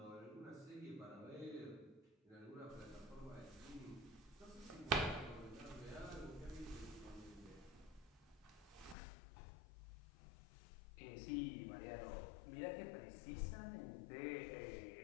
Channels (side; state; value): right; drops out; at 9.0 s